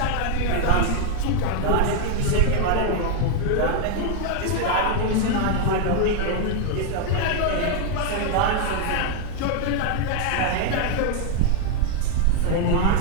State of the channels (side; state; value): both; different; correlation 0.01